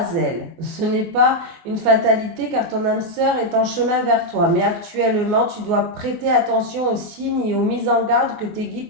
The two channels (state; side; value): late; left; 24 ms